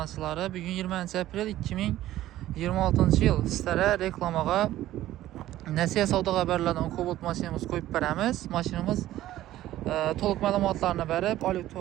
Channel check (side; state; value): left; quieter; 14.2 dB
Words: bugün 20 aprel 2026-cı il sizlərə reklamağa Nəsihə Savda Xəbərlərdən Cobalt maşinimiz qoyub verəmiz. Maşinimiz toluq məlumatlarını verib,